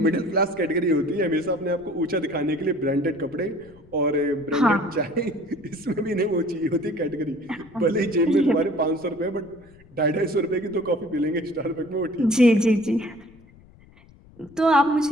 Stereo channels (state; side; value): noise; left; rumble, 25 dB below the sound